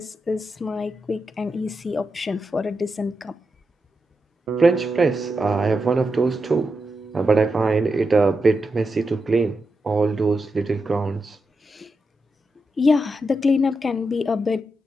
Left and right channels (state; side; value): normal; both; correlation 0.87